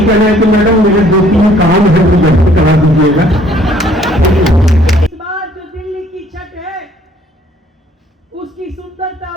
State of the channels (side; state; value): both; normal; correlation 0.60